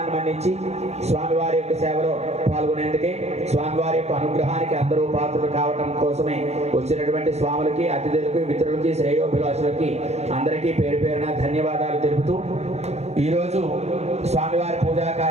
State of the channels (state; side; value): late; left; 0.31 ms